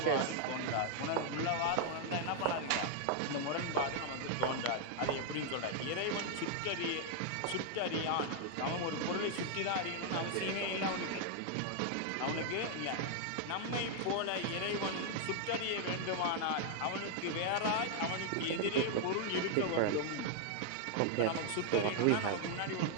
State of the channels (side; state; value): both; different; correlation 0.00